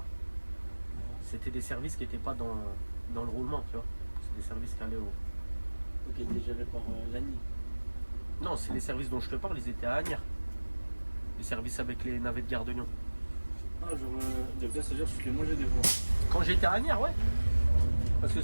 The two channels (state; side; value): inverted; both; correlation -1.00